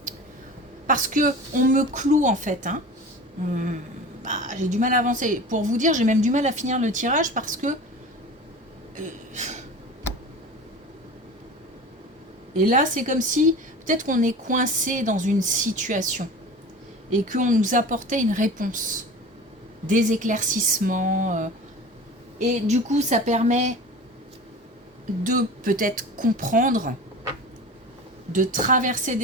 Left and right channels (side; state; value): both; normal; correlation 0.36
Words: parce que on me cloue en fait, hein. J'ai du mal à avancer. Pour vous dire, j'ai même du mal à finir le tirage parce que et là c'est comme si peut-être qu'on est coincé dans une situation et qu'on nous apportait une réponse, des éclaircissements, et du coup ça permet de peut-être comprendre, de traverser